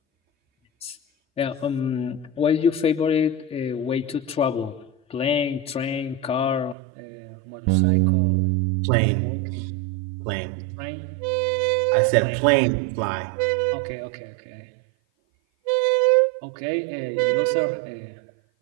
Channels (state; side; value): drops out; left; at 6.8 s